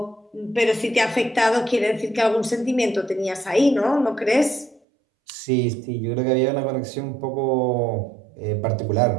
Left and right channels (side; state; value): left; drops out; at 4.8 s